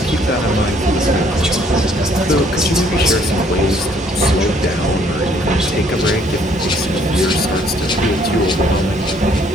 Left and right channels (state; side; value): normal; both; correlation 0.63